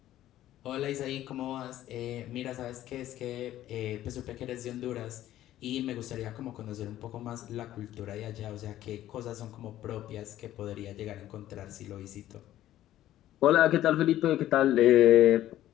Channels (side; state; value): right; quieter; 13.4 dB